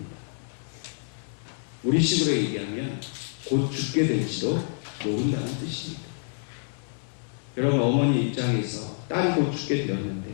우리 식으로 얘기하면 곧 죽게 될지도 모른다는 뜻입니다. 여러분, 어머니 입장에서 딸이 곧 죽게 되었는데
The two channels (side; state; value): right; silent; 60 dB below the other